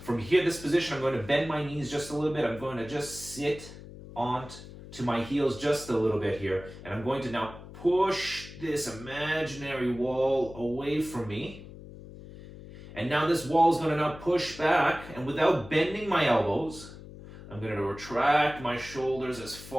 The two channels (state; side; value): noise; left; hum, 15 dB below the sound